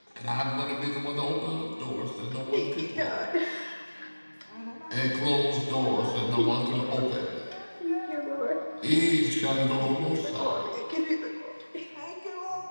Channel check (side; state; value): both; inverted; correlation -1.00